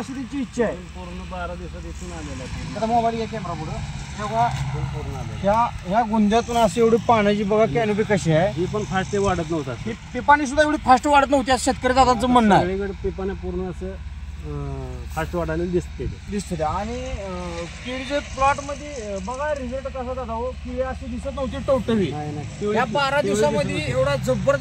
त्यांची इच्छा आहे. पूर्ण 12 दिवसात इथून आलेला आहे. आता मोबाईल या कॅमेरा पुढे ह्या गुंद्यातून अशी एवढी पाण्याची बघा कॅनोपी कशी आहे. ही पण फास्ट वाढत नव्हता, ही पिपाणी सुद्धा एवढी फास्ट वाढत नव्हती असं शेतकरी दादांचं म्हणणं आहे. सगळीकडे पिपाने पूर्ण असं फास्ट वाढायला दिसते. आणि केळीच्या प्लॉट मध्ये बघा रिझल्ट कसा दादा हो, केळी अशी दिसत नव्हती टवटवी. या 12 दिवसामध्ये एवढा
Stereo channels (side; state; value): both; identical; correlation 1.00